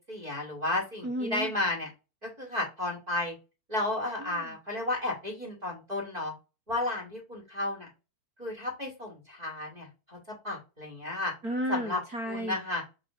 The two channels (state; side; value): late; left; 4.5 ms